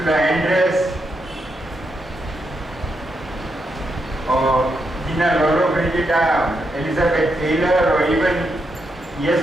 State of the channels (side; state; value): both; normal; correlation 0.82